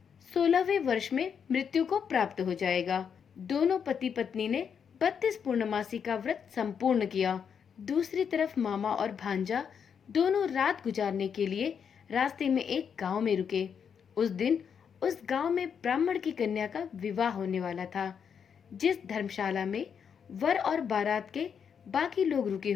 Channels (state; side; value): quieter; right; 7.2 dB